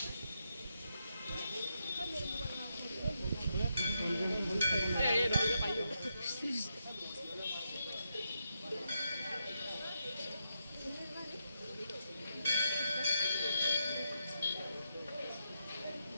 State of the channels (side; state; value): both; inverted; correlation -0.83